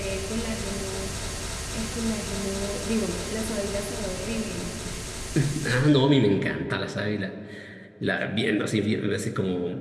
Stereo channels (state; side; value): identical; both; correlation 1.00